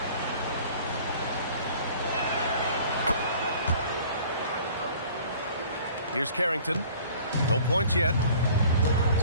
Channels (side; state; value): both; inverted; correlation -0.50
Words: Here's Carrington. No points yet.